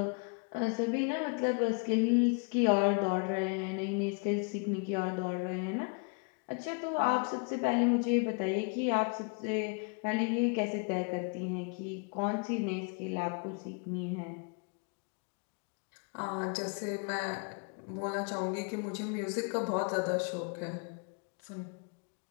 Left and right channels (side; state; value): right; quieter; 36.0 dB